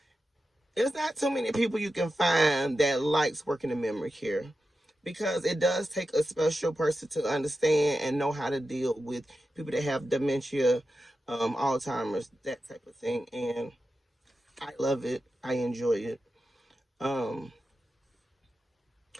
There's not too many people you can find that likes working in memory care because it does take a special person to understand and know how to deal with people that have dementia, Alzheimer's, that type of thing. And I love it. I enjoy it. But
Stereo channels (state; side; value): normal; both; correlation 0.91